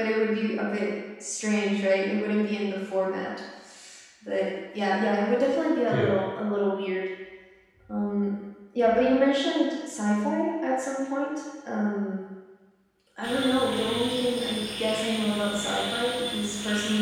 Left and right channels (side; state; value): both; identical; correlation 1.00